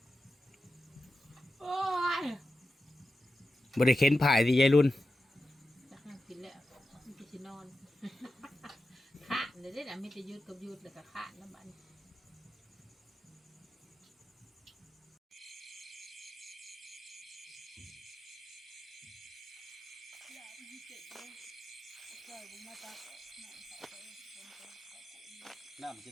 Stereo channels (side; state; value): both; normal; correlation 0.91